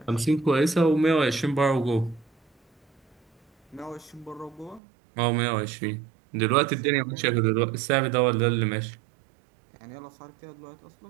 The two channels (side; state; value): left; drops out; at 4.8 s